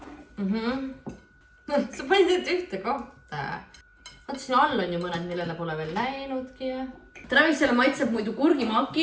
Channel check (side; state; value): both; identical; correlation 1.00